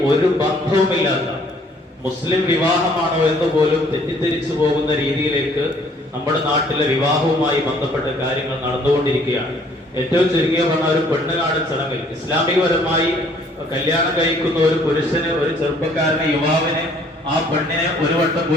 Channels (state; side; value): normal; both; correlation 0.60